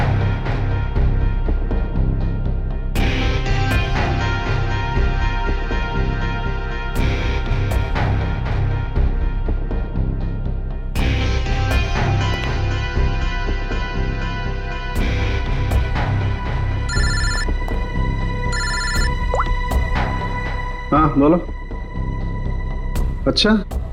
हाँ बोलो। अच्छा,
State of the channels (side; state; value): both; identical; correlation 1.00